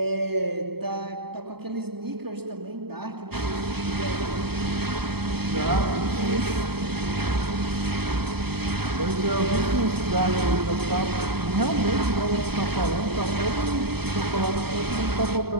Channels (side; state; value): left; late; 0.96 ms